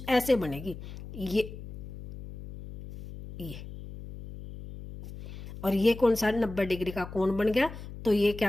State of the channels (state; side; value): noise; left; hum, 12 dB below the sound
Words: ऐसे बनेगी, ये और ये कौन सा 90 डिग्री का कोण बन गया, तो ये